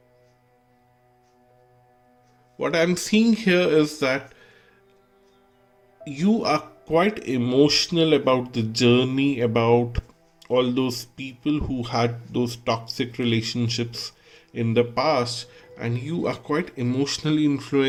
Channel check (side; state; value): both; identical; correlation 1.00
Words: What I'm seeing here is that you are quite emotional about the journey, about all those people who had those toxic relationships in the past, and you are quite emotionally